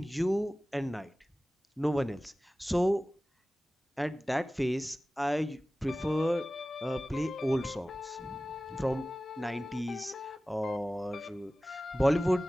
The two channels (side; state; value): both; normal; correlation 0.97